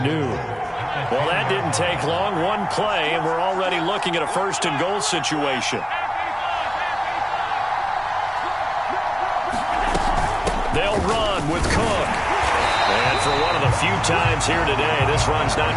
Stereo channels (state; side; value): identical; both; correlation 1.00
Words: Well, that didn't take long. One play, and we're already looking at a 1st and goal situation. They'll run with Cook. And for one of the few times here today, this run's